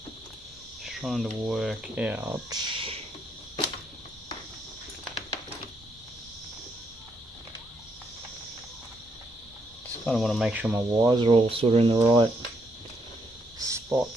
Trying to work out. Just kind of want to make sure my wires are all sort of in the right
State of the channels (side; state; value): both; normal; correlation 0.75